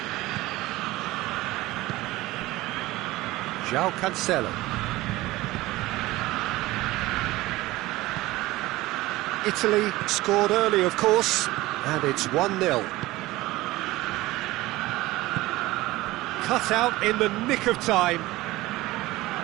João Cancelo. Italy scored early, of course, and it's 1-0. Cut out in the nick of time.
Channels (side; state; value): left; quieter; 18.6 dB